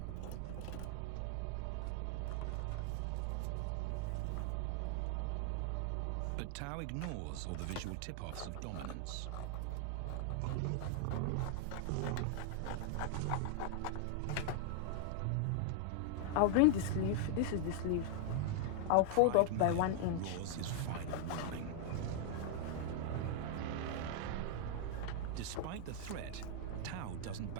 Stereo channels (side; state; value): both; different; correlation 0.00